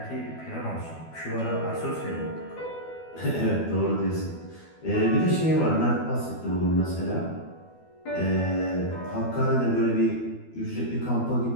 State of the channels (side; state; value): right; late; 12 ms